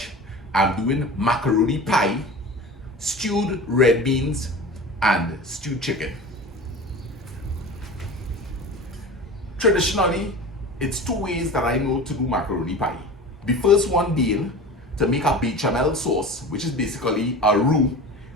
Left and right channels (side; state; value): both; normal; correlation 0.35